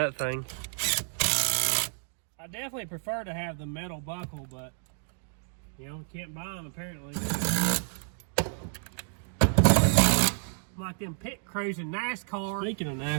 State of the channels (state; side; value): silent; left; digital silence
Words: thing. I definitely prefer to have the metal buckle, but you know, we can't buy them apparently. Like them pit crews in NASCAR. Speaking of